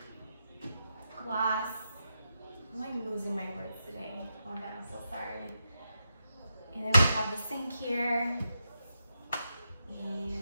glass. I'm like losing my words today. Oh my god, I'm so sorry. And then we have the sink here.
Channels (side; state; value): both; inverted; correlation -0.86